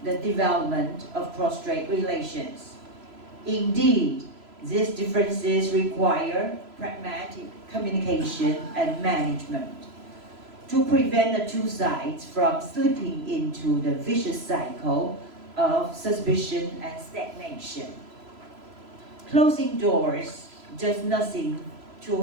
the development of cross-strait relations. Indeed, these differences require pragmatic communication and management to prevent the two sides from slipping into the vicious cycle of suspicion and stagnation. Closing doors does nothing to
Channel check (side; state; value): left; late; 3.0 ms